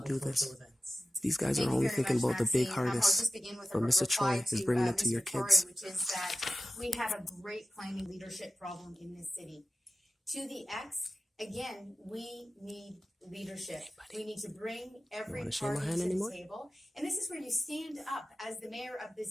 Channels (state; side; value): normal; both; correlation 0.92